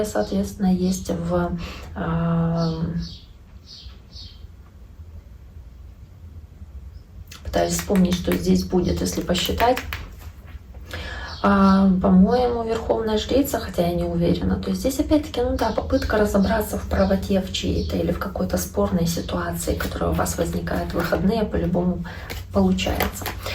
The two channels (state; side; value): identical; both; correlation 1.00